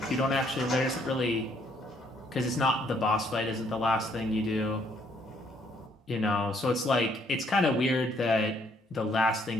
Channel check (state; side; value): normal; both; correlation 0.68